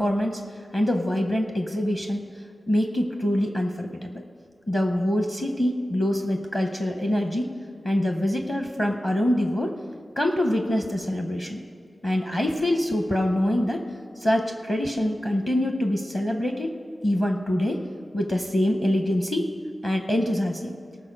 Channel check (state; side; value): normal; both; correlation 0.94